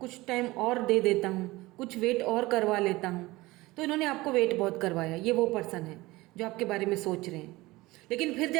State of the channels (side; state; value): left; quieter; 20.1 dB